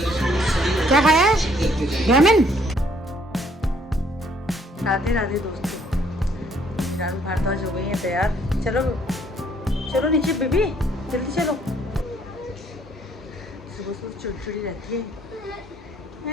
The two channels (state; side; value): normal; both; correlation 0.65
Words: खाया है? रामेन। राधे राधे दोस्तों, फिलहाल भारद्वाज हो गई है तैयार। चलो चलो नीचे बेबी, जल्दी चलो। सुबह सुबह चिड़चिड़ी रहती